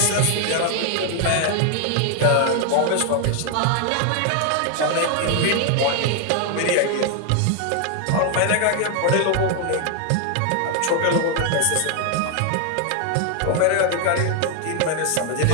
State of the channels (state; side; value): different; both; correlation 0.00